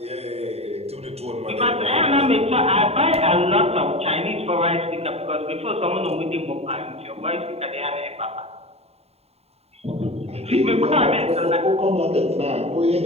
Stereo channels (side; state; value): left; late; 0.30 ms